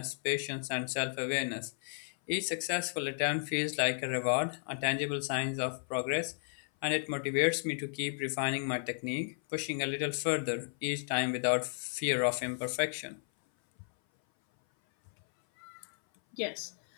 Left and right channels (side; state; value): right; silent; 55 dB below the other